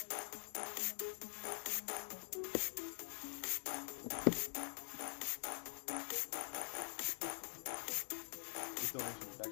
This donation was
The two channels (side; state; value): right; silent; digital silence